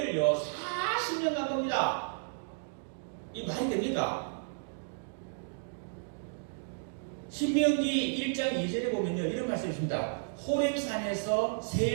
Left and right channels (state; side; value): silent; left; digital silence